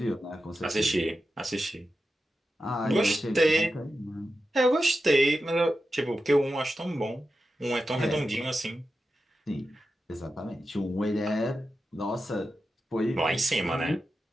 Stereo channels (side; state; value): both; normal; correlation 0.91